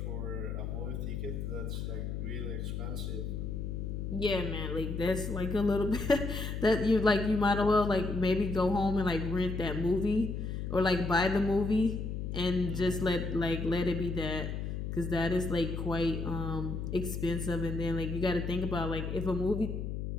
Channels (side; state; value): left; noise; hum, 4 dB below the sound